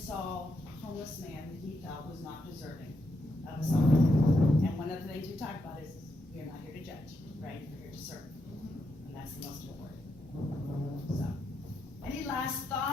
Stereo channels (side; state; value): both; normal; correlation 0.81